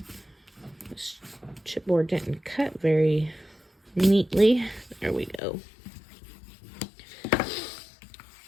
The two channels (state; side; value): drops out; right; at 5.4 s